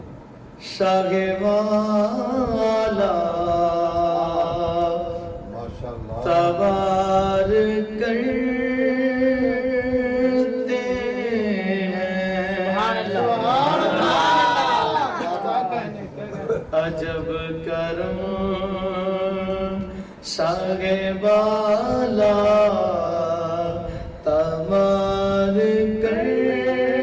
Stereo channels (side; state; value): both; identical; correlation 1.00